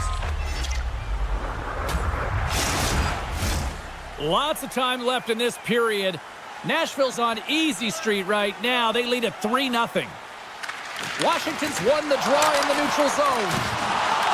Lots of time left in this period. Nashville's on easy street right now. They lead at 3-0. Washington's won the draw in the neutral zone.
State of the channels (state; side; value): identical; both; correlation 1.00